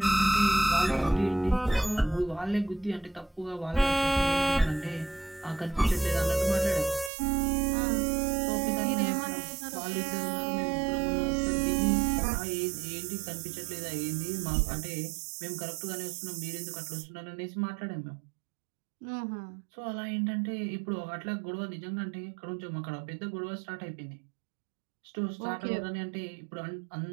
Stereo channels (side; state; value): left; drops out; at 7.1 s